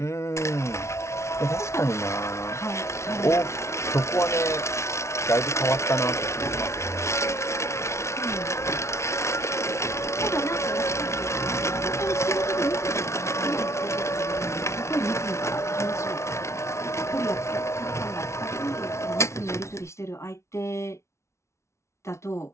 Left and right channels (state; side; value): late; right; 0.13 ms